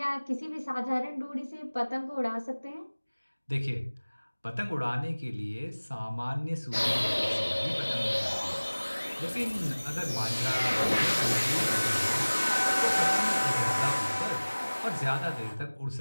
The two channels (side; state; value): both; inverted; correlation -1.00